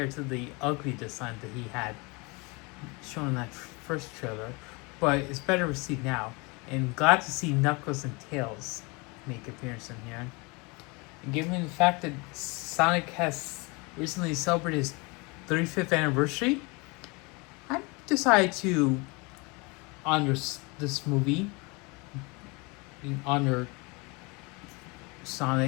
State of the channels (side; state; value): right; quieter; 28.1 dB